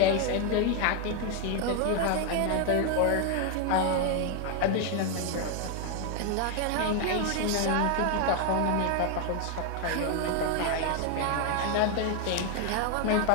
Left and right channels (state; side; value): different; both; correlation 0.01